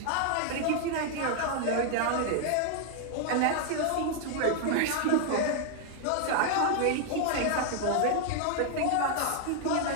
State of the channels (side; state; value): both; different; correlation 0.00